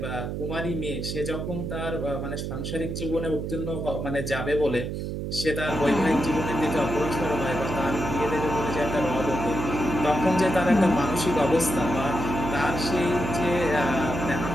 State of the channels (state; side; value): noise; right; hum, 4 dB below the sound